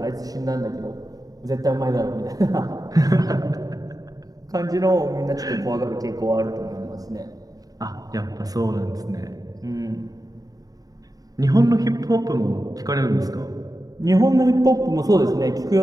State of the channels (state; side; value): late; left; 0.18 ms